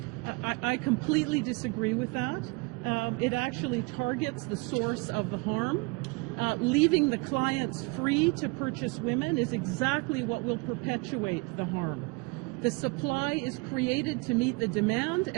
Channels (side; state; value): left; quieter; 27.5 dB